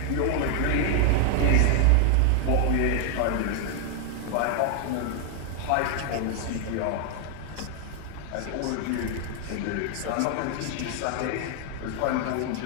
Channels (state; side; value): different; both; correlation 0.00